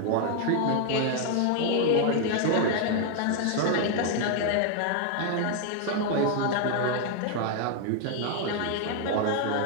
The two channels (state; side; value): different; both; correlation 0.00